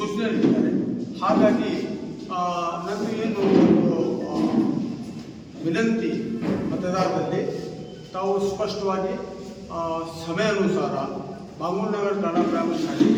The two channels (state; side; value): identical; both; correlation 1.00